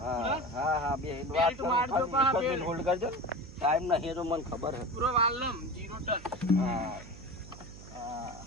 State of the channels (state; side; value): noise; right; hum, 16 dB below the sound